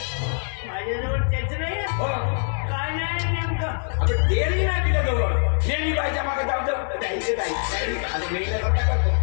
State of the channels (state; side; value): silent; right; 63 dB below the other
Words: माझ्याजवळ तेच नाही काय नाही नेमकं आता तेही नाही तुझ्याजवळ नेहमी बाईच्या मागे जाऊ द्यायचे जाईल आता मेल्यासारखं करतो